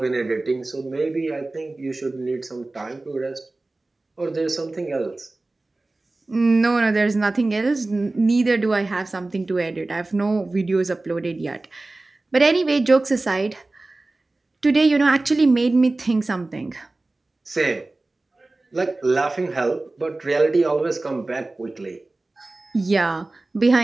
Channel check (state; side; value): quieter; left; 3.1 dB